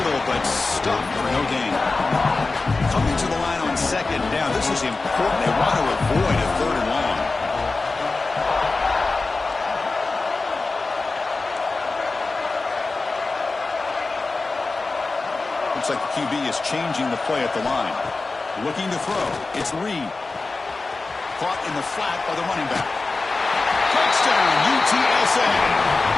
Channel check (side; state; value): right; quieter; 3.7 dB